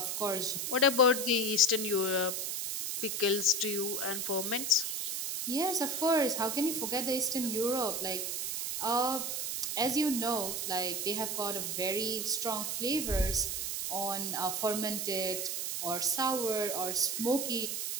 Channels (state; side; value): noise; right; hiss, 2 dB below the sound